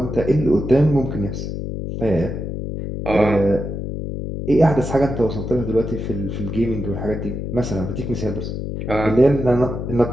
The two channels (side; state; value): left; noise; hum, 5 dB below the sound